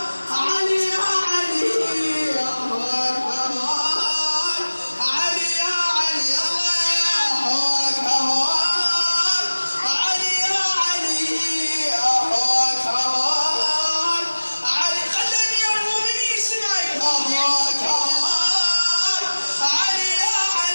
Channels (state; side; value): inverted; both; correlation -1.00